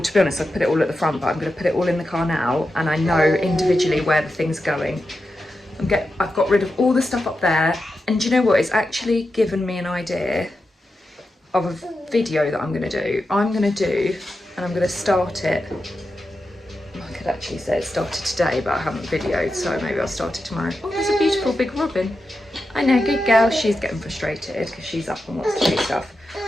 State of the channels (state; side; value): normal; both; correlation 0.89